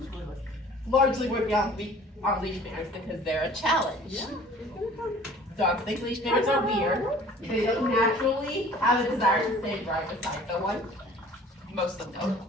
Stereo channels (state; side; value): normal; both; correlation 0.49